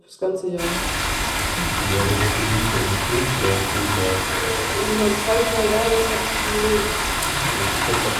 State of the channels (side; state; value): both; identical; correlation 1.00